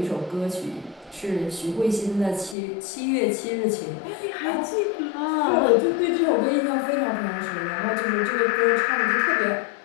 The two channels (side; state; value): right; drops out; at 2.6 s